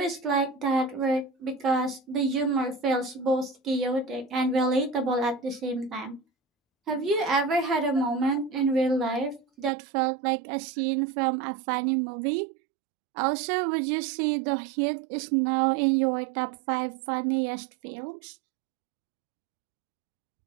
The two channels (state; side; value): drops out; left; at 9.7 s